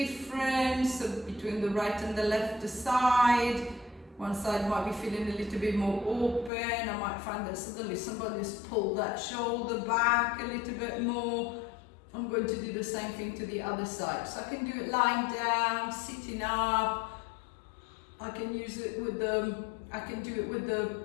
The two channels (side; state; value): right; drops out; at 6.5 s